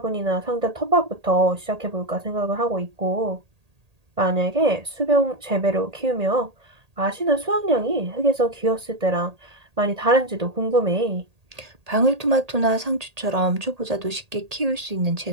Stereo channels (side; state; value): left; late; 1.8 ms